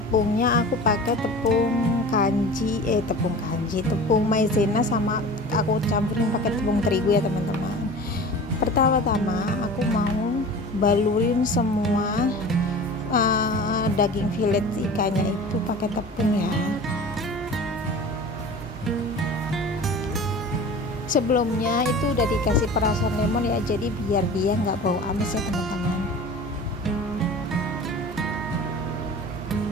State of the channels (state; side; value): normal; both; correlation 0.38